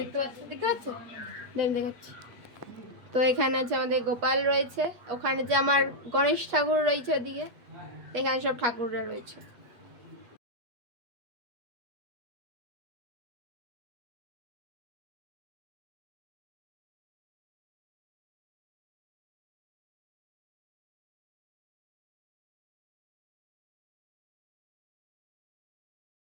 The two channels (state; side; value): late; left; 8.3 ms